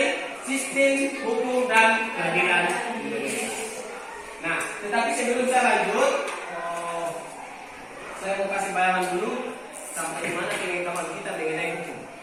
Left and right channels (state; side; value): identical; both; correlation 1.00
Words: sistem hukum dan peradilan Indonesia. Nah, tetapi sebelum saya lanjut, saya mau kasih bayangan dulu sampai di mana pengetahuan kita mengenai hukum.